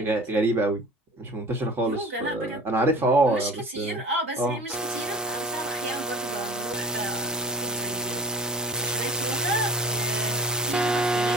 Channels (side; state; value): both; normal; correlation 0.42